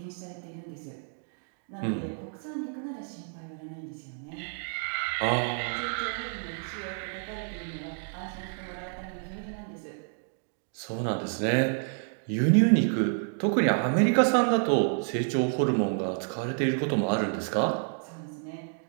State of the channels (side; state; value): left; silent; 57 dB below the other